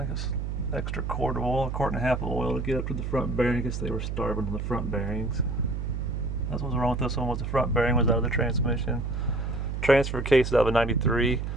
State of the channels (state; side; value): noise; right; hum, 3 dB below the sound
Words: it's extra quart of oil, 1.5 quart of oil to get up to the front bearing. I guess they were starving on the front bearings. That's what was wrong with this one, was the front bearing was out of the transmission. Transfer case out of a 93.